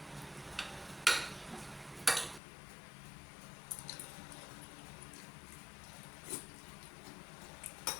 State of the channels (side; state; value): right; drops out; at 2.4 s